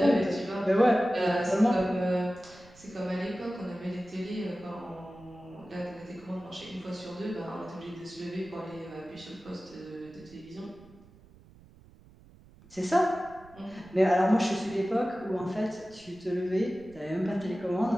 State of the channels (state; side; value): noise; right; rumble, 24 dB below the sound